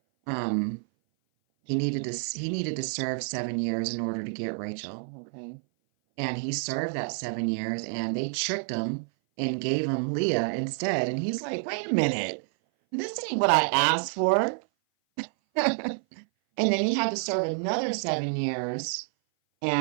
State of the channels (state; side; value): silent; left; 57 dB below the other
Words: um, he needed to serve 7 years in order to get Rachel. Okay. And he served that 7 years, and they tricked him and gave him Leah instead. And he's like, wait a minute, this ain't what I asked for. And then he had to serve another 7 years,